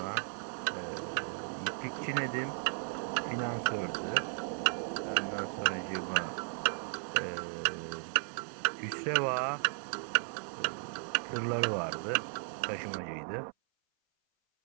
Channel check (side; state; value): left; silent; 54 dB below the other